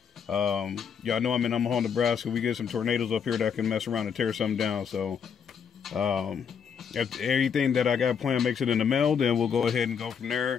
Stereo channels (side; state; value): right; quieter; 7.0 dB